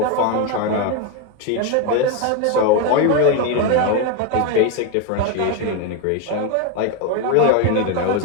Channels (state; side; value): different; both; correlation 0.02